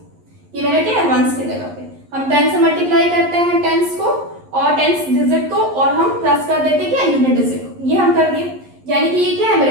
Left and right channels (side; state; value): left; late; 11 ms